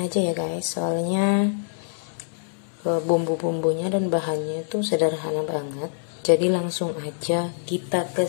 aja ya guys. Soalnya bumbu-bumbunya dan bahannya itu sederhana banget. Jadi langsung aja kita ke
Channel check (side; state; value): right; silent; digital silence